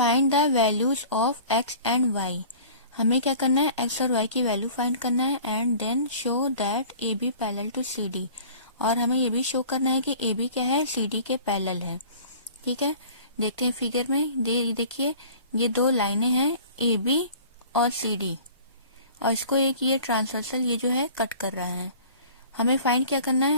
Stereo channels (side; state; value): both; inverted; correlation -0.45